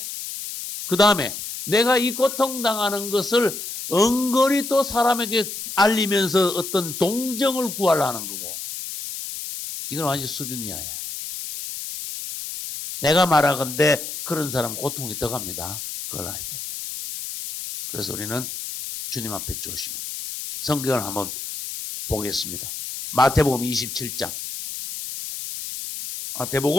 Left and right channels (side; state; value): left; noise; hiss, 7 dB below the sound